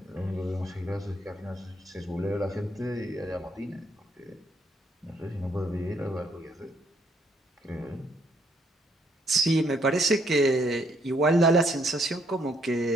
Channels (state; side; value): normal; both; correlation 0.70